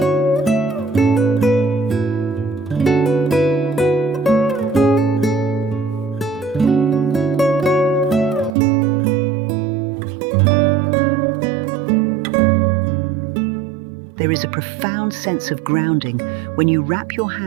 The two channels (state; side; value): drops out; left; at 8.5 s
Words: There is a profound sense of grounding when you wrap your